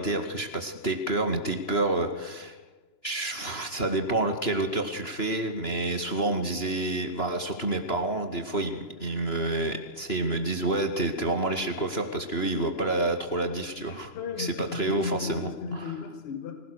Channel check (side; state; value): right; late; 2.9 ms